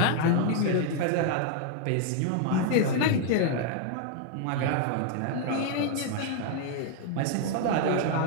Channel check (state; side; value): different; both; correlation 0.00